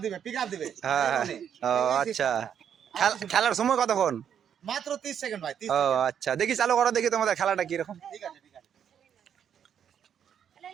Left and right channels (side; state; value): left; quieter; 8.6 dB